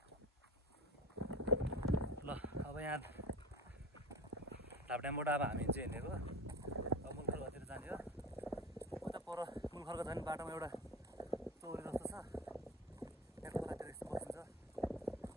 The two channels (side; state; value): both; normal; correlation 0.31